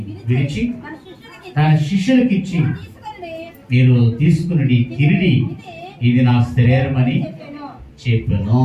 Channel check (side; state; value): both; identical; correlation 1.00